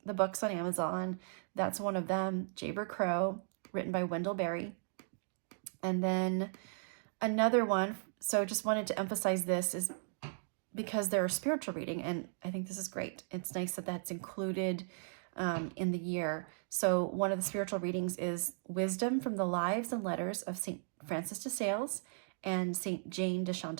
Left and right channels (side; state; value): left; silent; digital silence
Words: the books on Amazon. That's one of them, Jayber Crow, written by Wendell Berry. And then another one, so just wanted to emphasize this, is because they're a spiritual reading, and I think this is great. It's nice that that's included in the year. So one of the spiritual readings is Wisdom from the Lives and Letters of St. Francis de Sales and St. Jane de